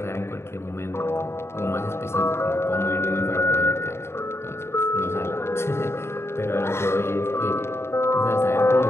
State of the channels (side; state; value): right; late; 0.12 ms